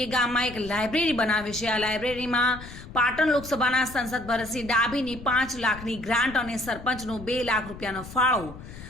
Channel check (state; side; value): noise; left; rumble, 14 dB below the sound